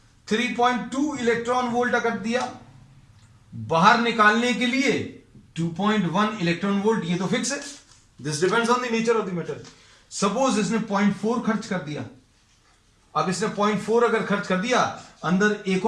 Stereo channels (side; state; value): both; identical; correlation 1.00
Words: 3.2 इलेक्ट्रॉन वोल्ट अगर दिया, बाहर निकालने के लिए 2.1 इलेक्ट्रॉन वोल्ट, ये तो फिक्स है, this depends on the nature of the metal. Suppose इसने 0.4 खर्च कर दिया, अब इसने 0.4 अगर खर्च कर दिया, अंदर एक